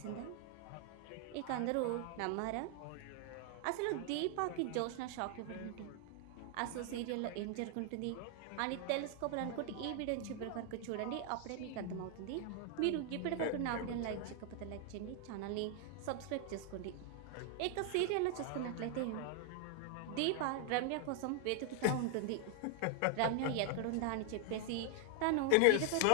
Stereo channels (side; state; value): both; different; correlation 0.00